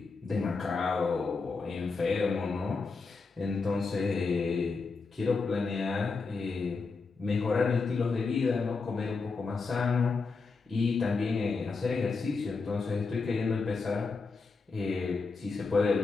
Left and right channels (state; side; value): quieter; right; 4.4 dB